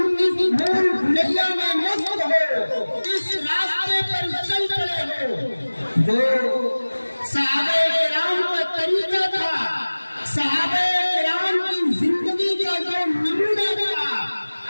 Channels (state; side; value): inverted; both; correlation -1.00